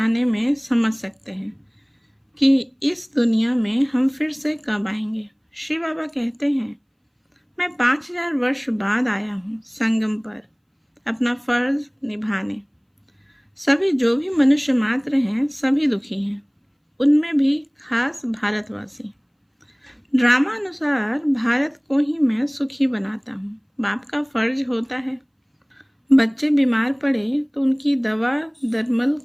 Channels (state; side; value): identical; both; correlation 1.00